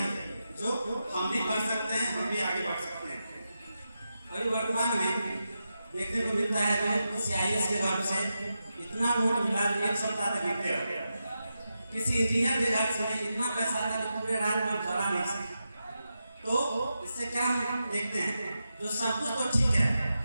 जो हम भी कर सकते हैं, हम भी आगे बढ़ सकते हैं। अभी वर्तमान में देखने को मिलता है जो CIS के घर से इतना नोट मिला, एक सप्ताह तक गिरते हो गया। किसी इंजीनियर के घर से इतना पैसा था कि पूरे रात में जला नहीं सका। तो इससे क्या हम देखते हैं, जो सब कुछ तो ठीक है,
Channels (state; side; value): inverted; both; correlation -0.89